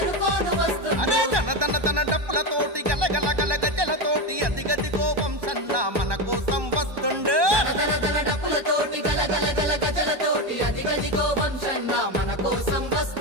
అరే దన డప్పులతోటి గలగల గల గజలతోటి అదిగదిగో వంశన్న మన కోసం వస్తుండు డప్పులతోటి గలగల గల గజలతోటి అదిగదిగో వంశన్న మన కోసం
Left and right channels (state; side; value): late; left; 1.2 ms